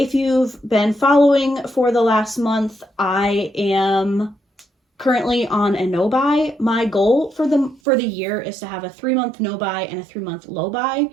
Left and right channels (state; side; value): drops out; left; at 7.8 s